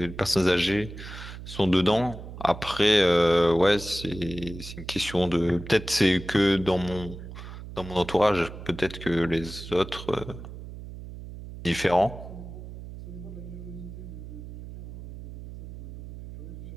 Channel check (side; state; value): right; noise; hum, 12 dB below the sound